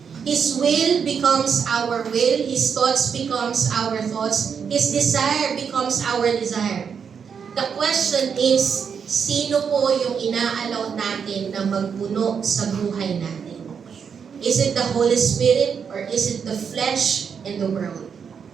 His will becomes our will. His thoughts becomes our thoughts. His desire becomes our desire. The question is, sino po yung inaalaw natin na magpuno sa buhay natin? Is it the Holy Spirit or is it the flesh and the world?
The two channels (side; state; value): left; quieter; 6.7 dB